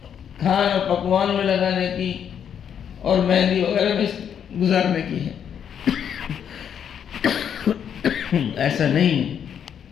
کھانا پکوان میں لگانے کی اور مہندی وغیرہ میں گزارنے کی ہے. ایسا نہیں ہے.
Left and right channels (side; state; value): right; quieter; 8.4 dB